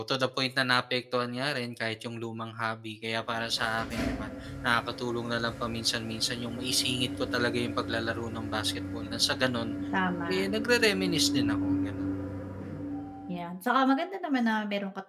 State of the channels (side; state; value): both; identical; correlation 1.00